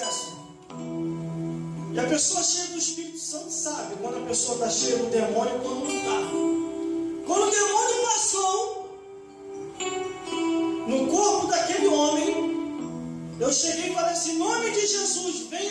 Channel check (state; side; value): identical; both; correlation 1.00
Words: E a pessoa cheia do Espírito Santo sabe quando a pessoa está cheia do demônio e quando não está. Quando o demônio passou no corpo daquele homem, eu cheguei e falei assim, em nome de Jesus,